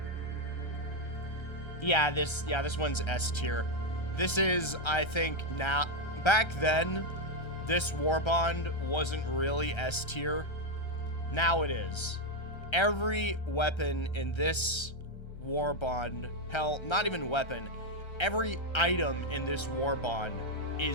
Yeah, this one's S tier. This is, I think, now... Back then, this Warbond wasn't really S tier. Now it is. Every weapon in this Warbond, hell, not even weapon, every item in this Warbond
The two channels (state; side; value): late; right; 1.3 ms